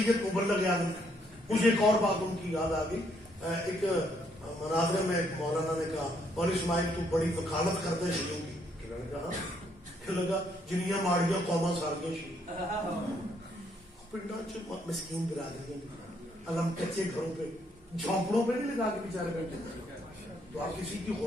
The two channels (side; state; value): both; normal; correlation 0.71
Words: مبلغ اعظم. مجھے ایک اور بات ان کی یاد آ گئی. ایک مناظرے میں ایک مولانا نے کہا مولوی اسماعیل تو بڑی وکالت کرتے ہیں شیعوں کی. لگا جنیاں ماڑیاں قوما ساریاں شیعہ پنڈا مسکین برادری علم کچے گھروں پہ جھونپڑوں پہ نہیں لگا کے بیچارے بیٹھے. تو آپ کسی کی